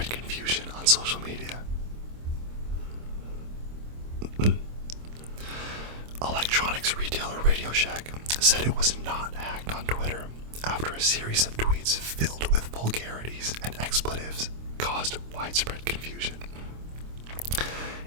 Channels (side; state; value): left; late; 26 ms